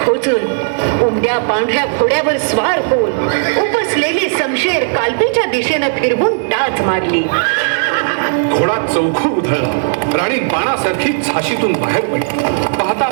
खोचून उमद्या पांढऱ्या घोड्यावर स्वार होऊन उपसलेली समशेर कालपीच्या दिशेनं फिरवून टाच मारली. घोडा चौखूर उधळला. राणी बाणासारखी झाशीतून बाहेर पडली. पाहता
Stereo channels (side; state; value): left; silent; digital silence